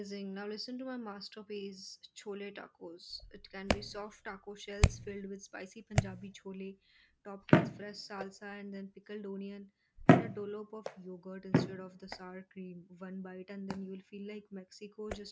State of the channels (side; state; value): both; identical; correlation 1.00